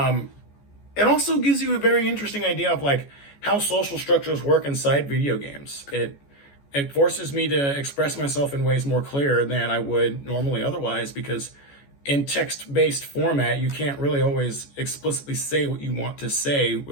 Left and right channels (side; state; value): right; late; 14 ms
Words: It also gives you a very interesting idea of like how social structures work inside video games. It forces me to express myself in ways more clear than I would normally otherwise, because in text-based format, you can't really always explicitly say what you want to say